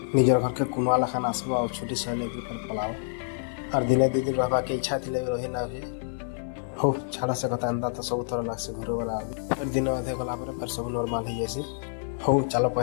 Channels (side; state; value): right; silent; 57 dB below the other